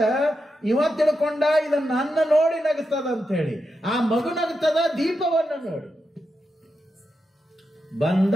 ಇವ ತಿಳ್ಕೊಂಡ ಇದನ್ನ ನನ್ನ ನೋಡಿ ನಗುತ್ತದ ಅಂತ ಹೇಳಿ. ಆ ಮಗು ನಗುತ್ತದ ದೀಪವನ್ನು ನೋಡಿ. ಬಂದ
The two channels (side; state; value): both; normal; correlation 0.87